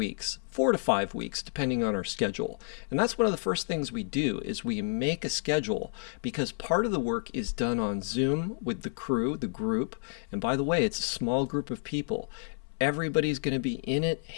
4 to 5 weeks, depending on our schedule. And that's one of the first things we do is we make a schedule, because part of the work is done on Zoom with the crew, the group. And by the way, it's a small group of people. Everybody's going to be in it,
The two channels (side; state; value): right; silent; 58 dB below the other